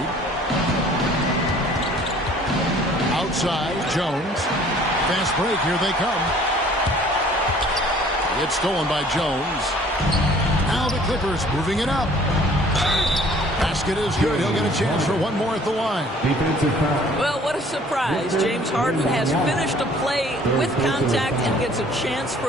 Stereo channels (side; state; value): both; normal; correlation 0.54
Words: Outside, Jones. Fast break, here they come. It's stolen by Jones. Now the Clippers moving it up. Basket is good. He'll get a chance for one more at the line. Well, what a surprise. James Harden has finished a play with contact and gets a chance